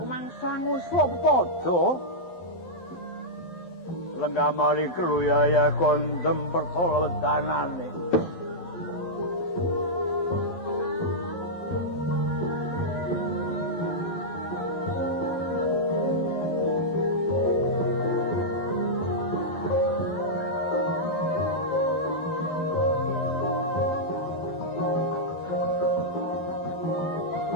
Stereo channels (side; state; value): right; late; 11 ms